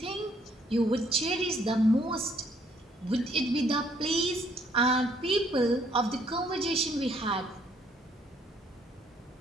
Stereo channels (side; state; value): both; normal; correlation 0.66